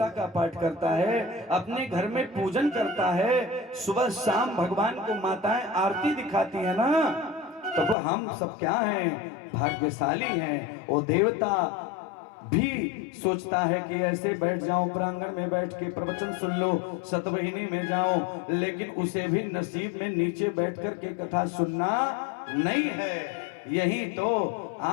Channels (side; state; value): right; drops out; at 8.0 s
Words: का पाठ करता है, अपने घर में पूजन करता है, सुबह शाम भगवान को माताएं आरती दिखाती है ना, तो वो हम सब क्या हैं, भाग्यशाली हैं। वो देवता भी सोचता है कि ऐसे बैठ जाऊं, प्रांगण में बैठ के प्रवचन सुन लो, सतवहिनी में जाऊं, लेकिन उसे भी नसीब में नीचे बैठ कर के कथा सुनना नहीं है। यही तो